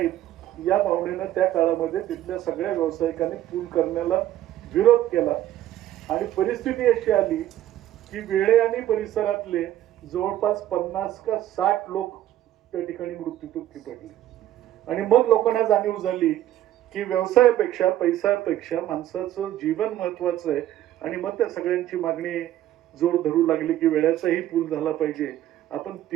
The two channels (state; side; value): quieter; left; 12.8 dB